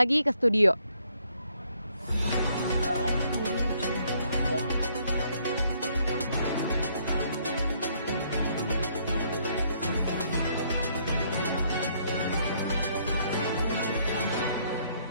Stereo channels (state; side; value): inverted; both; correlation -0.68